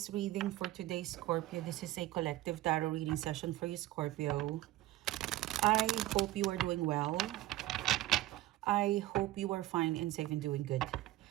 reading for today, Scorpio, this is a collective tarot reading session for you, Scorpio. I hope you are doing well. I hope you are fine and safe and doing good.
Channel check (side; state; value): left; quieter; 15.9 dB